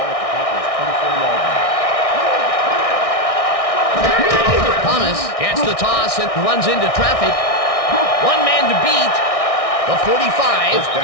at the Packers' 24-yard line. Thomas gets the toss and runs into traffic. One man to beat. The 45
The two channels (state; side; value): late; right; 1.6 ms